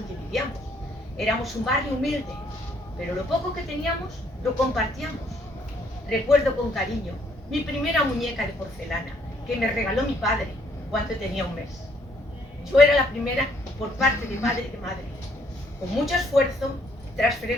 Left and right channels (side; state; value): both; normal; correlation 0.67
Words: vivíamos. Éramos un barrio humilde, pero lo poco que teníamos lo compartíamos. Recuerdo con cariño mi primera muñeca de porcelana que me regaló mi padre cuando tenía un mes. Yo era la primera por parte de padre y de madre. Con mucho esfuerzo, tras